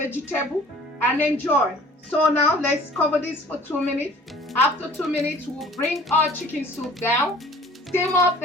and enjoy. So now let's cover this for 2 minutes. After 2 minutes, we'll bring our chicken soup down, steam up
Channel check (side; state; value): both; normal; correlation 0.50